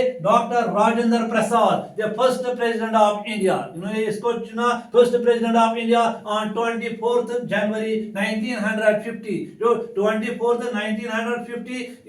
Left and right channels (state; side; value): identical; both; correlation 1.00